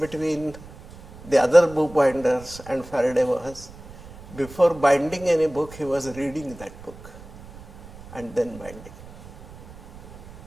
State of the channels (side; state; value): right; noise; rumble, 18 dB below the sound